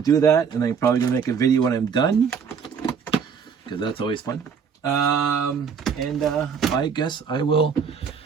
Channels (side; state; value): left; quieter; 6.6 dB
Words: that, and I'm probably going to make a video when I'm done, because that's always fun. I guess I will